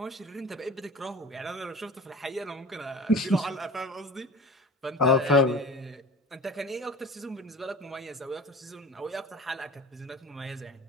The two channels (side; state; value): both; normal; correlation 0.39